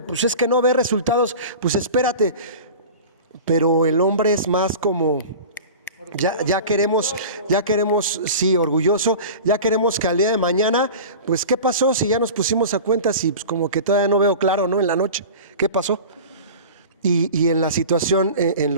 pues es que no ve resultados, pues espérate. Pero el hombre es más como, ya queremos, sí, orgulloso, ya queremos que al día de mañana, pues ¿qué pasó si ya nos pusimos a cuentas y pues como que todavía no veo claro, ¿no? En la noche, ¿qué pasó? Y en la situación, en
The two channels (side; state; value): both; inverted; correlation -0.35